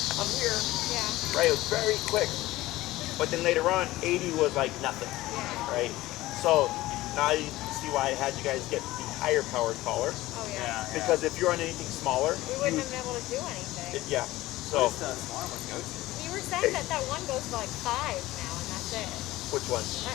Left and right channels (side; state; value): right; quieter; 17.5 dB